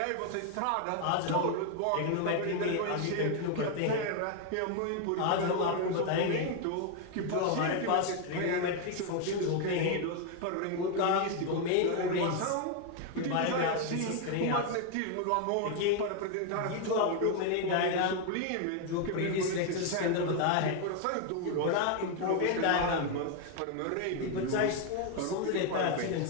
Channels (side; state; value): both; different; correlation 0.01